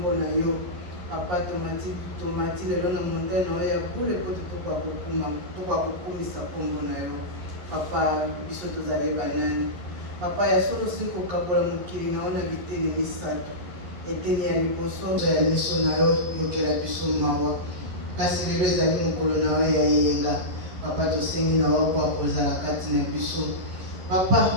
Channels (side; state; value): left; late; 11 ms